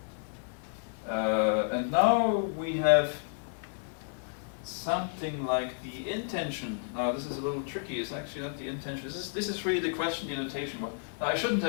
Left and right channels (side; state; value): right; silent; digital silence